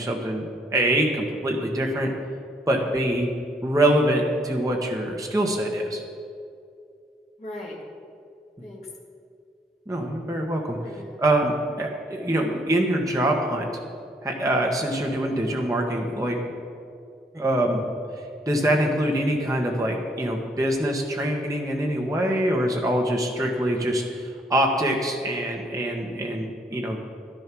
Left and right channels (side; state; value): both; normal; correlation 0.67